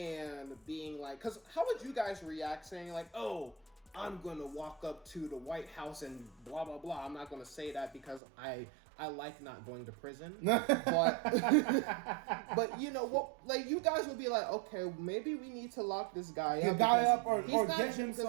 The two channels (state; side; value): drops out; left; at 8.2 s